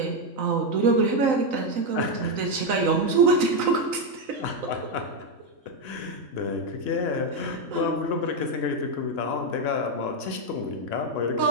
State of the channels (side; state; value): left; late; 3.9 ms